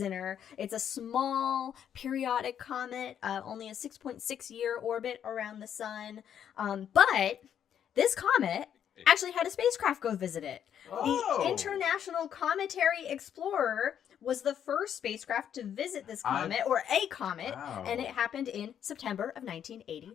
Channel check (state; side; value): quieter; right; 9.2 dB